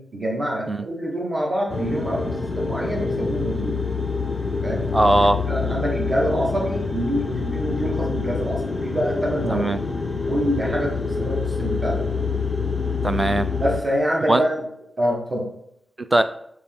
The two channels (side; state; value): both; normal; correlation 0.85